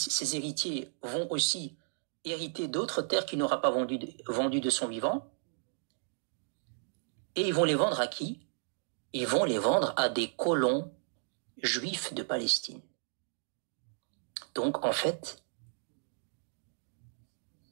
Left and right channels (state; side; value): silent; left; digital silence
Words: ses héritiers, vont aussi hériter d'autres terres qu'il n'aura pas vendues de son vivant. Et ils vont les vendre à qui? Ils vont les vendre à des colons juifs de Palestine. Donc, en fait,